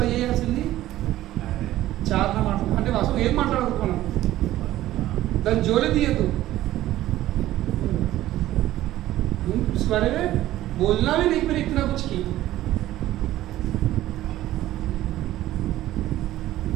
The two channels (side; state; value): left; quieter; 14.6 dB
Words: చేయాల్సింది చాలా మాట్లాడు, అంటే అసలు ఏం మాట్లాడకూడదు, మనం దాన్ని జోలే తీయద్దు. इस बारे में बोलना भी नहीं, फिर इतना कुछ की